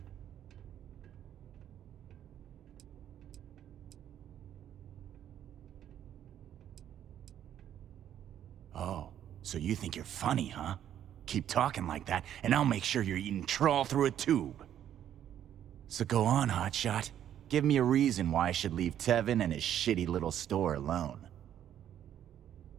Oh, so you think you're funny, huh? Keep talking like that, and I'll make sure you're eating trawl through a tube. So go on, hotshot. Give me a reason why I should leave Tevin and his shitty little store alone.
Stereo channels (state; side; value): quieter; left; 10.5 dB